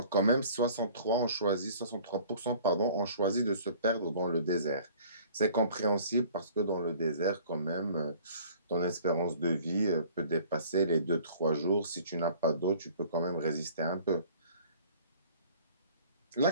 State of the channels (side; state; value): both; inverted; correlation -0.51